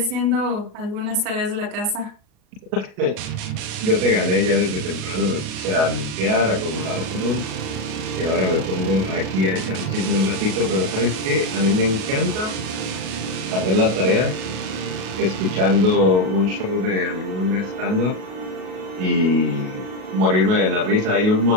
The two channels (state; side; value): late; left; 37 ms